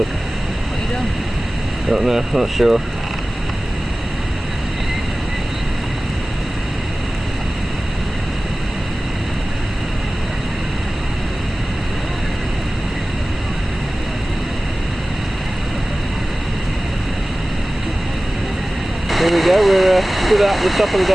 What are you doing? Don't know, not sure. Here we go, we're stood at the top of the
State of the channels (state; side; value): normal; both; correlation 0.97